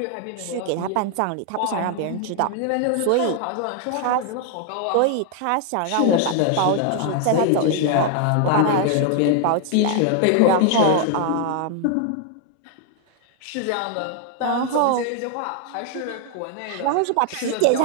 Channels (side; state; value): both; different; correlation 0.00